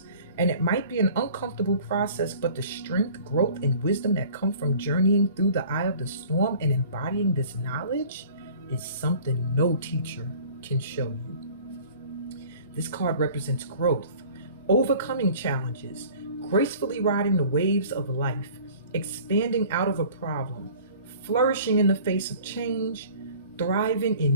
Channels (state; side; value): inverted; both; correlation -0.48